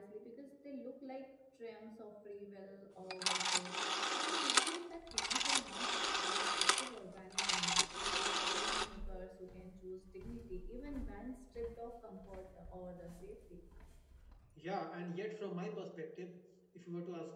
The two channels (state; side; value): identical; both; correlation 1.00